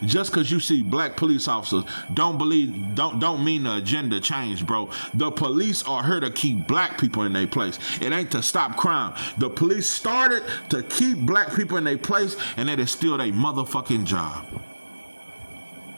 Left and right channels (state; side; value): inverted; both; correlation -1.00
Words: just because you see black police officers don't mean the agenda changed, bro. The police are here to keep black people in their place. It ain't to stop crime. The police started to keep black people in their place, and it is still their motherfucking job.